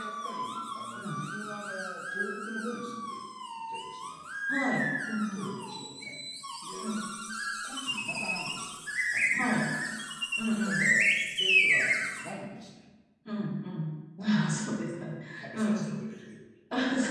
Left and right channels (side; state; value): both; identical; correlation 1.00